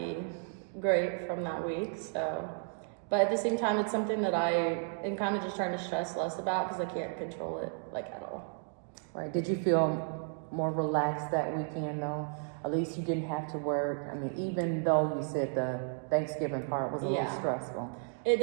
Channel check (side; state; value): left; silent; 56 dB below the other